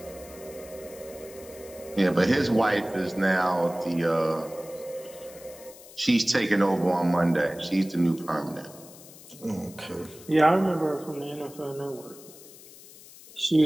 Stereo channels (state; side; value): noise; left; hiss, 19 dB below the sound